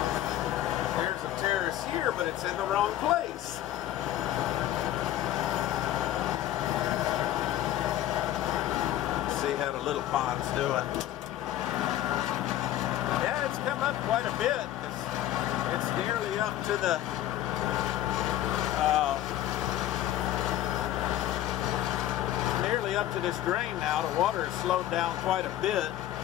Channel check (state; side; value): quieter; right; 13.1 dB